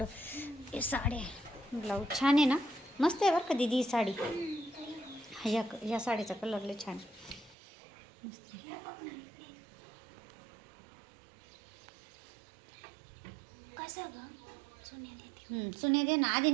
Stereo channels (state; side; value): drops out; left; at 7.6 s